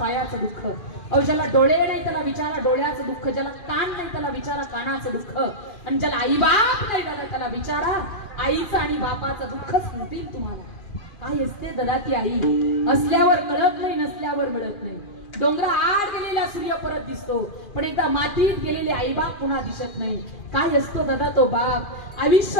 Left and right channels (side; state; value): right; late; 2.4 ms